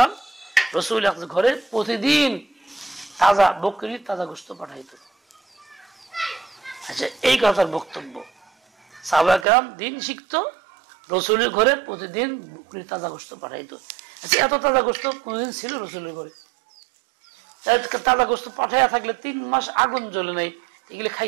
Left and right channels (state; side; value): drops out; left; at 9.5 s